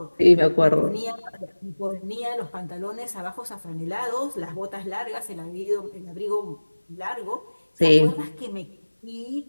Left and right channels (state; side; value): inverted; both; correlation -1.00